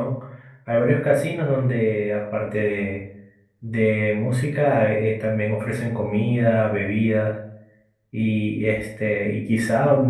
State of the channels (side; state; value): both; identical; correlation 1.00